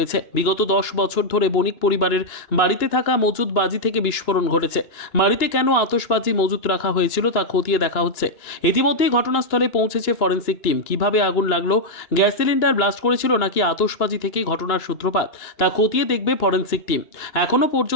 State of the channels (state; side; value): late; right; 2.9 ms